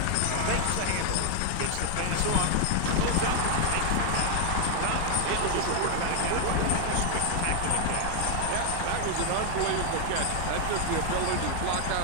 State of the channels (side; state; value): both; different; correlation 0.00